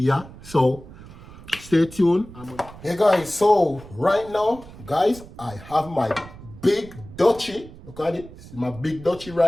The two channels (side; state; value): right; noise; rumble, 17 dB below the sound